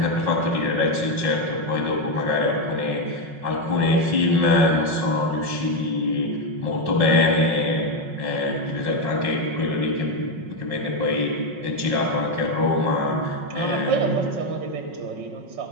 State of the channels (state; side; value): late; left; 5.5 ms